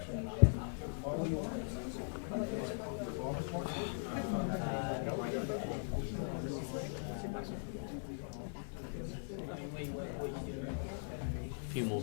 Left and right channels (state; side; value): silent; right; digital silence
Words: A few more